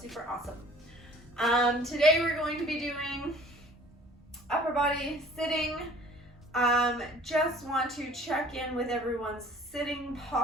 awesome. Today we're going to be doing upper body sitting. Just want to check in with everyone's sitting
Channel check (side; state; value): both; normal; correlation 0.50